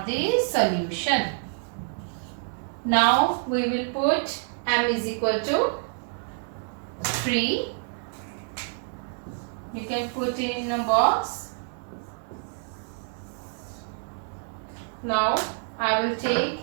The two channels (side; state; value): left; silent; 56 dB below the other